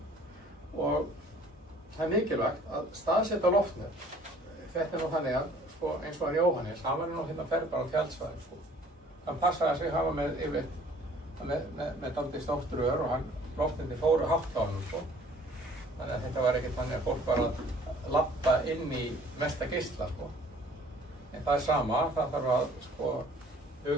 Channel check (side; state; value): both; normal; correlation 0.54